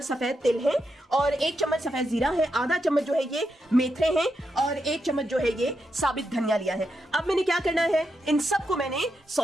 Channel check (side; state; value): both; normal; correlation 0.84